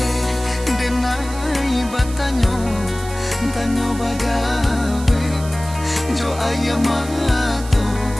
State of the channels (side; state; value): right; noise; hiss, 15 dB below the sound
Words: denai batanyo, tanyo bagawe jo ayamato